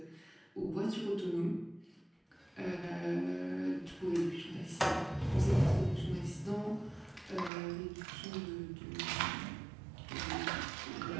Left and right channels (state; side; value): drops out; left; at 7.5 s